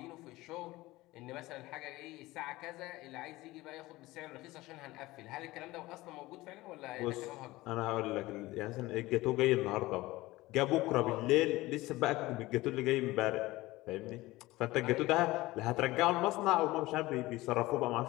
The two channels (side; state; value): right; quieter; 19.0 dB